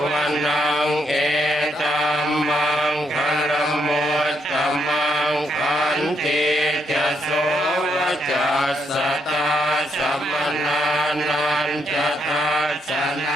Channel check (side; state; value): both; normal; correlation 0.77